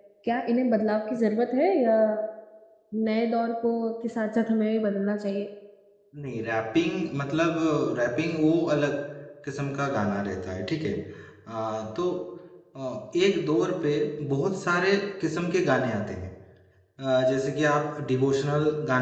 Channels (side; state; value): both; identical; correlation 1.00